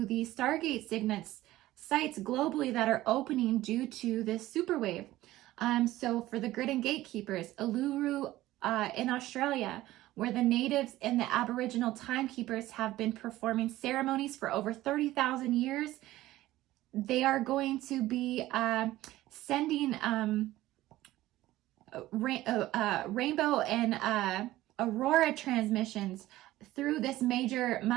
the Stargate sites globally that are opening due to this super wave. So for the grid and gatekeepers, Uluru in Australia, where the natives and the Aboriginal timekeepers have been performing ceremonies for over 30,000 years. They are going to be sending rainbow and aurora transmissions through this major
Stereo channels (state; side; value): quieter; left; 16.1 dB